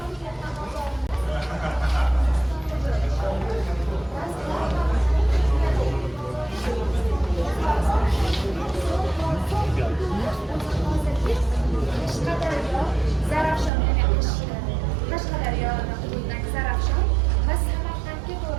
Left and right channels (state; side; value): drops out; left; at 13.7 s